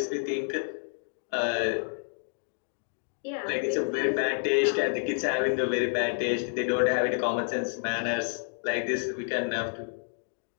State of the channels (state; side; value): silent; right; digital silence